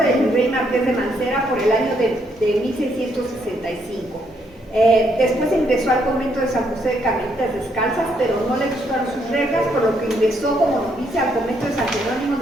del virrey Marqués de Mancera por el año de 1665. Después ingresó al convento de San José de Carmelitas Descalzas, pero no le gustaron sus reglas, por lo que ingresó como novicia al convento de San Jerónimo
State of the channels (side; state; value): both; normal; correlation 0.73